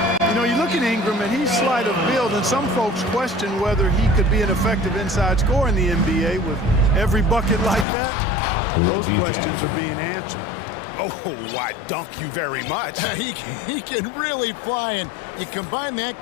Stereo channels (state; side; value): drops out; right; at 7.9 s